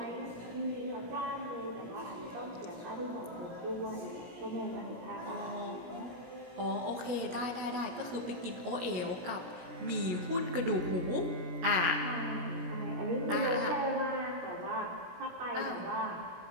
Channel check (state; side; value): late; left; 17 ms